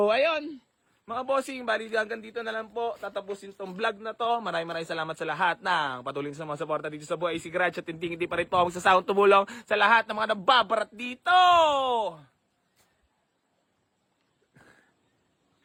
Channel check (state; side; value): identical; both; correlation 1.00